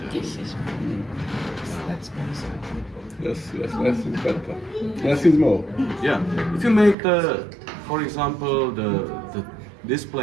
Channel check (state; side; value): drops out; left; at 7.0 s